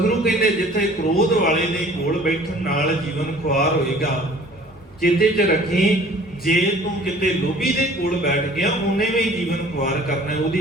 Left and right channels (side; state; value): both; normal; correlation 0.50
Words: ਕਹਿੰਦੇ ਜਿੱਥੇ ਕ੍ਰੋਧ ਵਾਲੇ ਦੇ ਕੋਲ ਬੈਠਣ ਨਾਲ ਜੀਵਨ ਖੁਆਰ ਹੋਏਗਾ, ਚੇਤੇ 'ਚ ਰੱਖੀ, ਜੇ ਤੂੰ ਕਿਤੇ ਲੋਭੀ ਦੇ ਕੋਲ ਬੈਠ ਗਿਆ, ਉਹਨੇ ਵੀ ਜੀਵਨ ਖੁਆਰ ਕਰਨਾ। ਉਹਦੀ